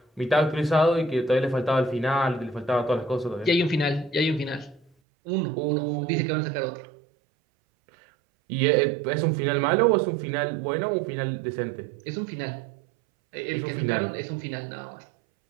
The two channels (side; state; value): left; drops out; at 4.9 s